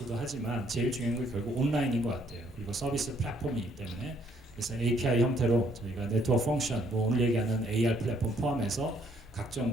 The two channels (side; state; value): both; normal; correlation 0.67